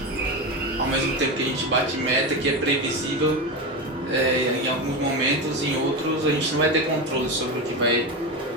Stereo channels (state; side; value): normal; both; correlation 0.18